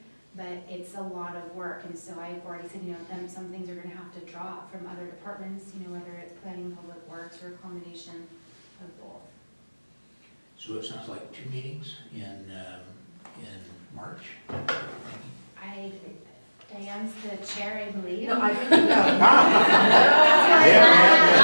But it's a lot of work, and so I've already said, some things are gonna have to drop from other departments, whether it's planning, public works, or accommodation, of both. So it sounds like 2 meetings in March? Diane's the chair, I believe. No, I think, no. Not the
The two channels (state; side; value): inverted; both; correlation -1.00